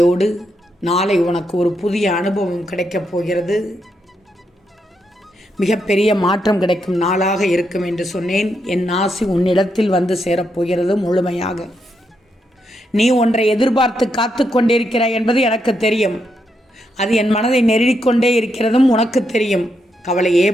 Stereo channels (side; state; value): both; normal; correlation 0.81